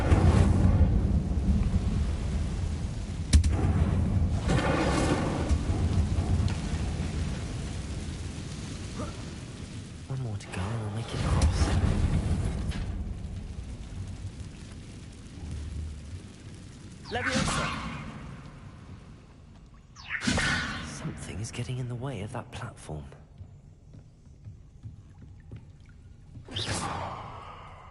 One more to go and we'll make it across. Leviosa! Something is getting in the way of that platform.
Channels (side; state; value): both; identical; correlation 1.00